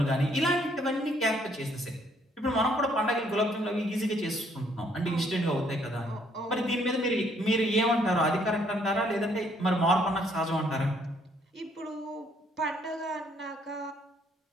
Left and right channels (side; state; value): both; normal; correlation 0.67